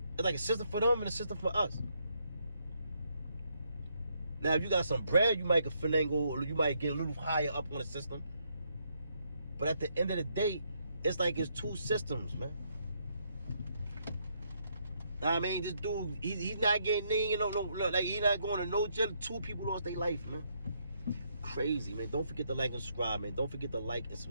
It's like a system for them and a system for us. Now, if you got some bread, you might get finagle, or you might get a little higher up on the system. But at the end of the day, it's like it's 2 systems, man. I mean, this dude, he's not getting in, like he's not going to no jail. 2 people lost their life, man. Crazy, man. Don't forget to like and subscribe, man. Don't forget to like and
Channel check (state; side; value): inverted; both; correlation -0.75